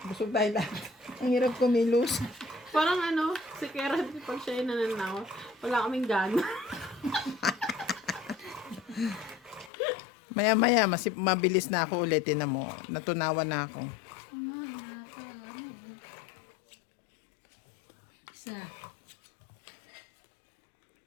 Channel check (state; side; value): drops out; right; at 9.7 s